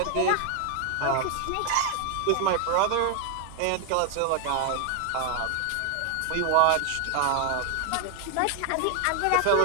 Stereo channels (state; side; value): different; both; correlation 0.00